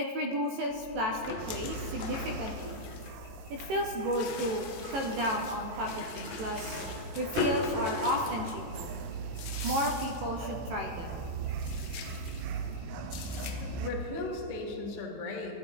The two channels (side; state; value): left; late; 18 ms